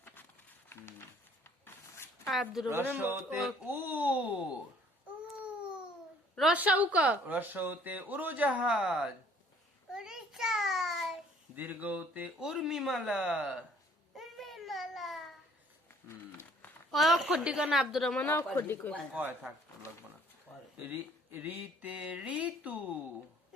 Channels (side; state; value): both; normal; correlation 0.58